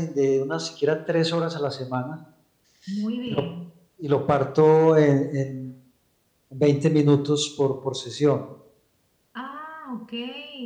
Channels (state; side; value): identical; both; correlation 1.00